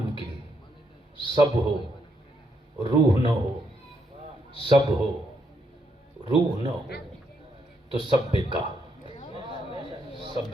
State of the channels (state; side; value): normal; both; correlation 0.77